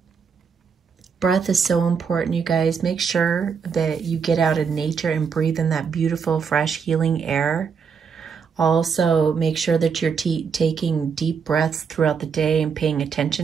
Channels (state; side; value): quieter; left; 6.2 dB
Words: Breath is so important, you guys. Make sure that you get out in nature and breathe in that beautiful, fresh, healing air. Also, make sure that you're taking deep breaths throughout the day and paying